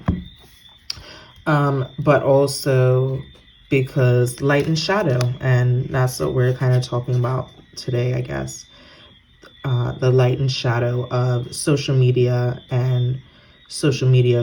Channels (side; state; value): both; identical; correlation 1.00